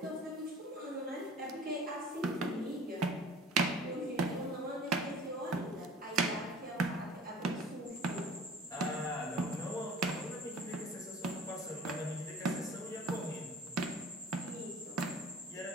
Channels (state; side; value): normal; both; correlation 0.45